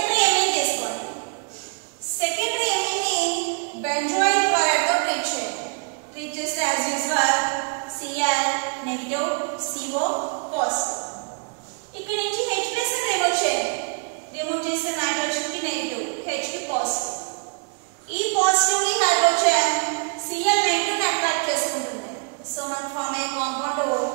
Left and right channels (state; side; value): quieter; left; 37.7 dB